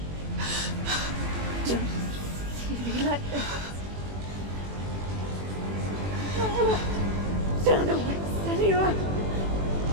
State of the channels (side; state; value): left; late; 21 ms